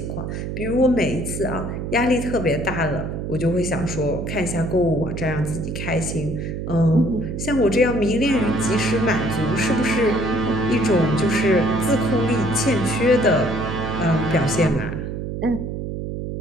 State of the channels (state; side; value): noise; right; hum, 5 dB below the sound